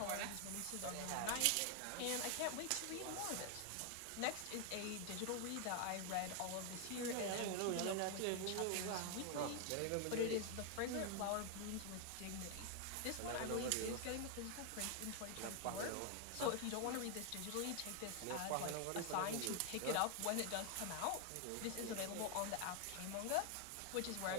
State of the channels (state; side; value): different; both; correlation 0.00